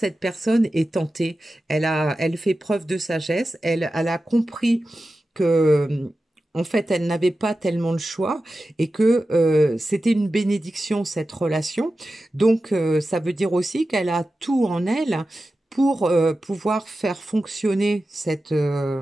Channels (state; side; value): normal; both; correlation 0.93